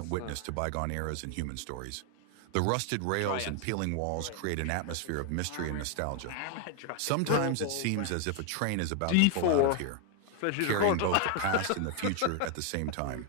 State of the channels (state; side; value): different; both; correlation 0.00